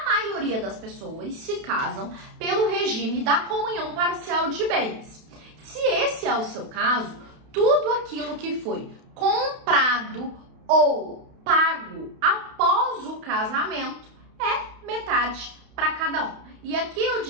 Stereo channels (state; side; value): late; left; 32 ms